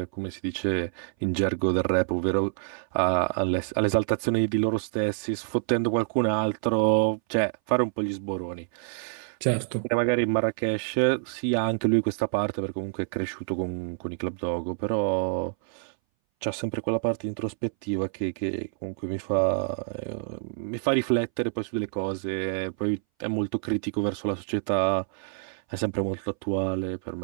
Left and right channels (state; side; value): silent; left; 59 dB below the other